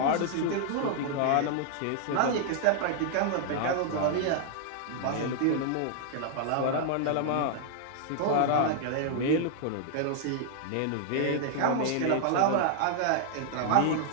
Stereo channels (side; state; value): both; different; correlation -0.01